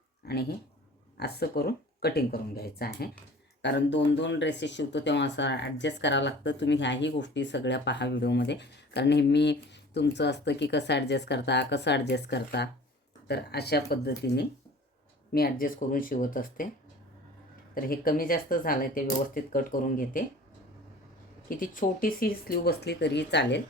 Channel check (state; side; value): normal; both; correlation 0.44